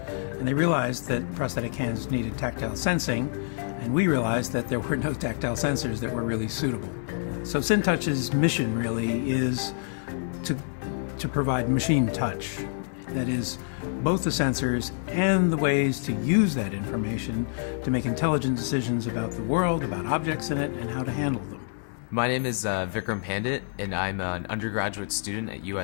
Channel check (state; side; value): silent; right; digital silence